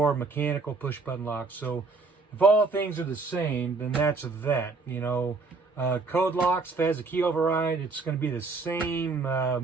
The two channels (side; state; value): left; quieter; 4.0 dB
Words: mechanical push button lock. So if all things are the same, then that's that. Code locks, if it has a key override, it's going to be the same